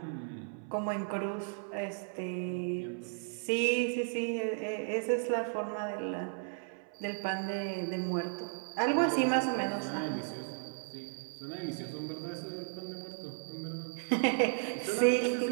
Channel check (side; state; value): left; silent; 55 dB below the other